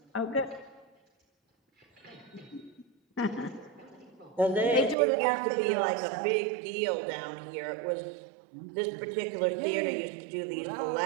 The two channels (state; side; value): drops out; left; at 5.0 s